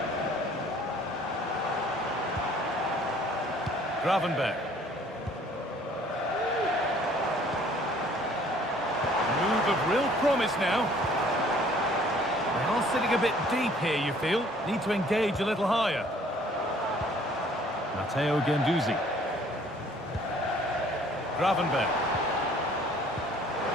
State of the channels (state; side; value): normal; both; correlation 0.56